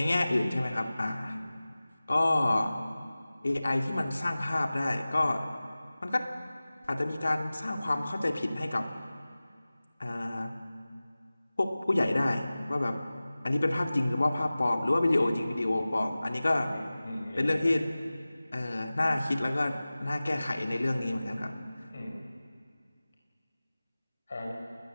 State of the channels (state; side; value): inverted; both; correlation -0.98